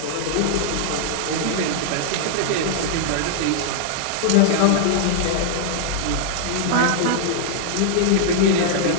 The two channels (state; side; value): different; both; correlation -0.01